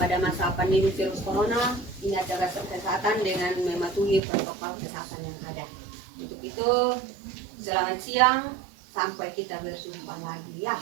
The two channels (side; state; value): left; drops out; at 4.2 s